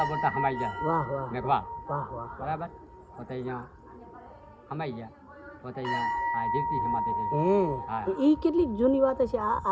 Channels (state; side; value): identical; both; correlation 1.00